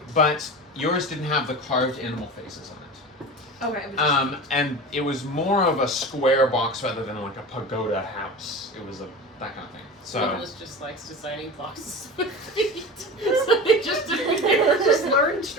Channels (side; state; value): both; normal; correlation 0.31